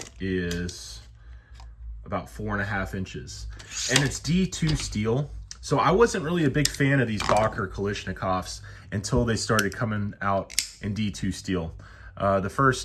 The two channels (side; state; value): both; identical; correlation 1.00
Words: is about 4.5 inches. And it's D2 steel. So I wasn't really a big fan of these Boker Kalashnikovs until they started coming out in D2 steel. The